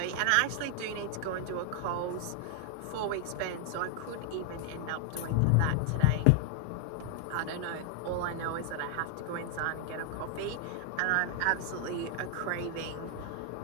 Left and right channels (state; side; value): different; both; correlation 0.00